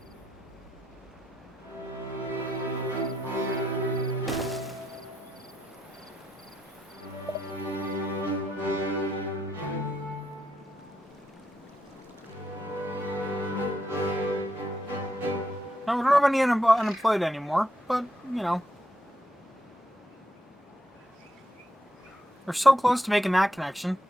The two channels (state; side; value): normal; both; correlation 0.80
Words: No, we don't have any unemployed anymore, but, you know. We're so close to making that connection.